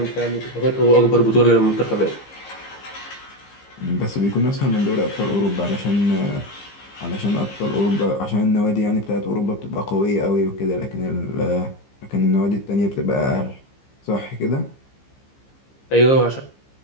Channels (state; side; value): late; right; 15 ms